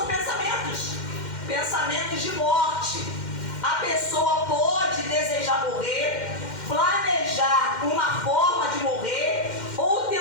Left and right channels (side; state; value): right; late; 2.1 ms